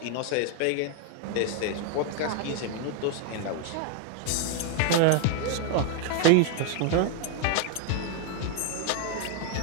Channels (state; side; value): different; both; correlation 0.01